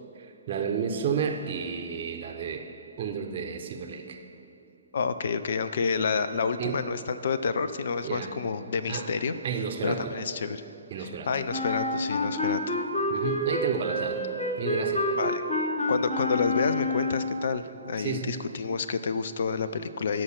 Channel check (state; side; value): inverted; both; correlation -0.53